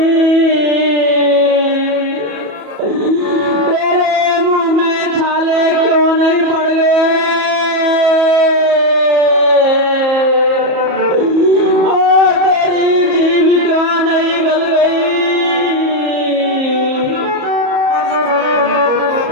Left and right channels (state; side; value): late; left; 34 ms